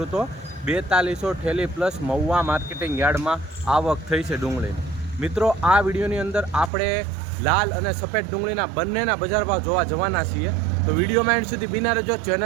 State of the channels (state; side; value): drops out; left; at 6.7 s